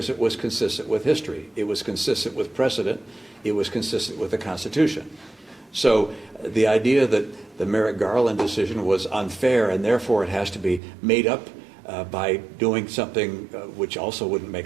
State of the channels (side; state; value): left; drops out; at 10.8 s